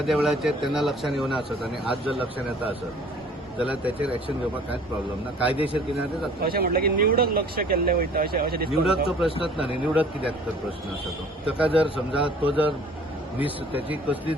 वेळाचेर तेन्ना लक्षात येवना आसत आणि आज जर लक्षात येता आसत जाल्यार त्याचेर एक्शन घेवपाक कांयच प्रॉब्लेम ना. कायदेशीर कितें ते जाता. अशें म्हटलें की निवडक लक्ष केल्लें वयता अशें निवडकचो प्रश्नच ना न्ही. निवडक कित्याक तर प्रश्न आसा तो. ताका जर समजा तो जर त्याची कसलीच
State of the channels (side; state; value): both; normal; correlation 0.51